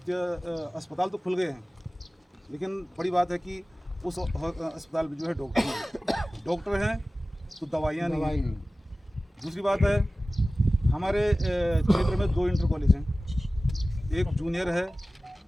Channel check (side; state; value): both; normal; correlation 0.97